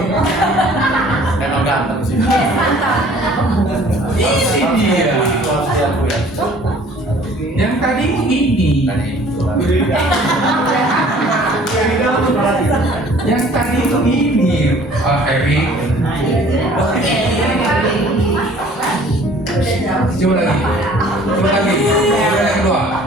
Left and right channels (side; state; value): both; normal; correlation 0.53